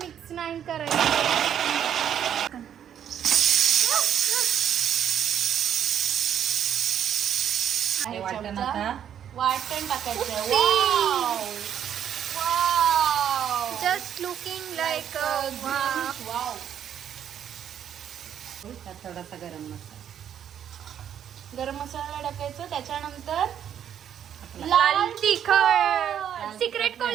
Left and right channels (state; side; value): quieter; left; 9.4 dB